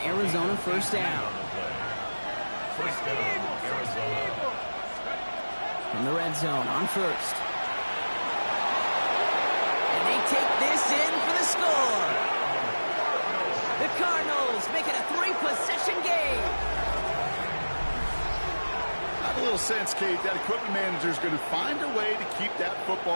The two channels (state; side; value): inverted; both; correlation -1.00